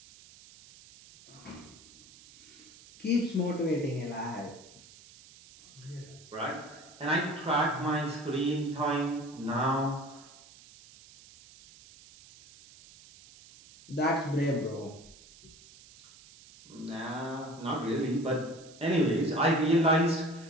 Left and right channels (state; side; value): noise; right; hiss, 22 dB below the sound